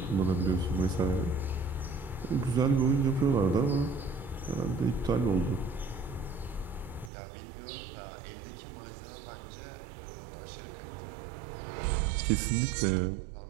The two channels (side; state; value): left; drops out; at 7.1 s